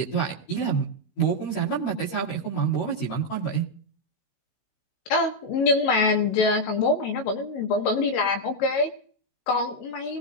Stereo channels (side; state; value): right; late; 16 ms